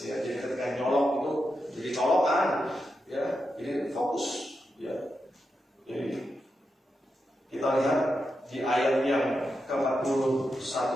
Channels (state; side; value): normal; both; correlation 0.87